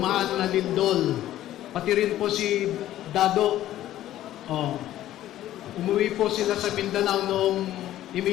na lindol. Pati rin po si Dado. Umuwi po sila sa Mindanao noong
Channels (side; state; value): right; quieter; 13.4 dB